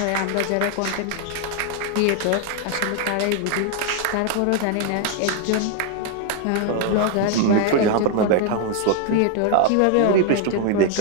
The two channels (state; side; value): different; both; correlation 0.01